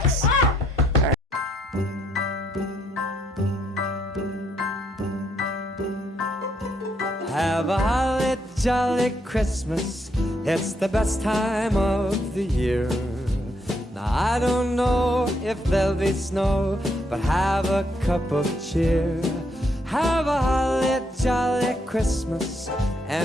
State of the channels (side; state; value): both; normal; correlation 0.74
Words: Have a holly jolly Christmas. It's the best time of the year. Now I don't know if there'll be snow, but have a cup of cheer. Have a holly jolly Christmas.